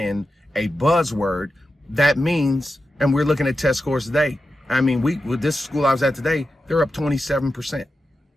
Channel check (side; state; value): both; normal; correlation 0.90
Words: a buzzword. That means, and we're looking at test scores today. I mean, with this school I was at today, they're up 27%.